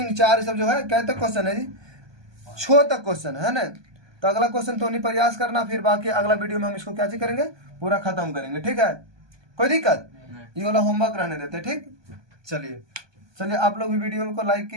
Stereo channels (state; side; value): late; left; 1.2 ms